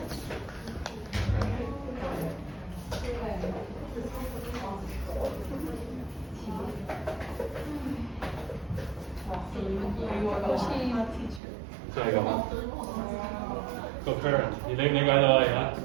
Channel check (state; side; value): drops out; left; at 11.4 s